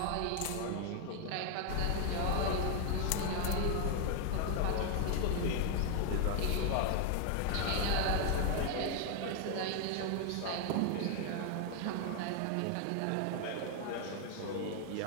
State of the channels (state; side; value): different; both; correlation 0.00